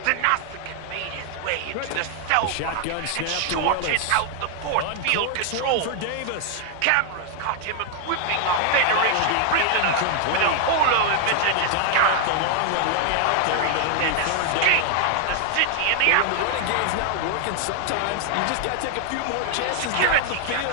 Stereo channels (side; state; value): both; different; correlation 0.00